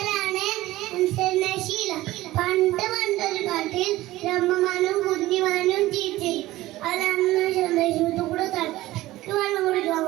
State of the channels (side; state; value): left; quieter; 17.0 dB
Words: നശീല. പണ്ടൊരു കാട്ടിൽ രമ്മമാനും കുഞ്ഞിമാനും ജീവിച്ചു. അവരന്ന് സന്ദേശത്തു കൂടെ തലക്ക് വെള്ളം